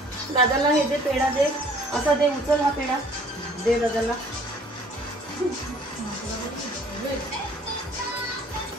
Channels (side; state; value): both; normal; correlation 0.55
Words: दादाला, हे दे पेढा दे. असा दे, उचल हा पेढा दे दादाला.